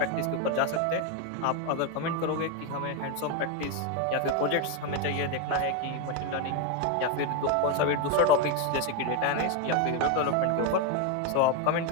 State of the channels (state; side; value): different; both; correlation 0.02